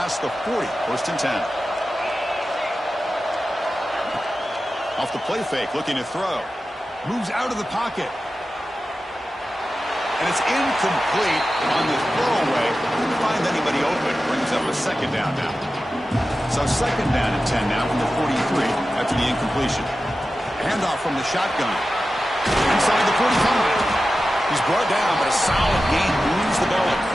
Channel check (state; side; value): normal; both; correlation 0.93